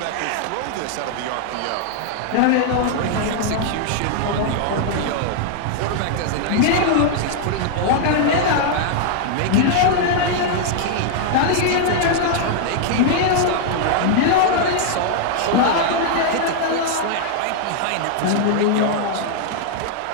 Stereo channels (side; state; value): both; different; correlation -0.01